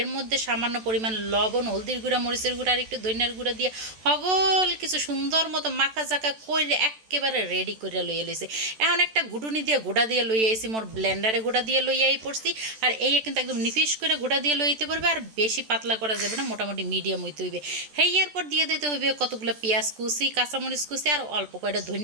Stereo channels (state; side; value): late; left; 14 ms